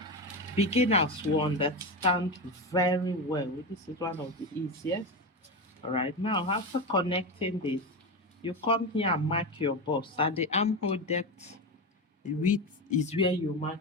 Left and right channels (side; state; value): both; normal; correlation 0.18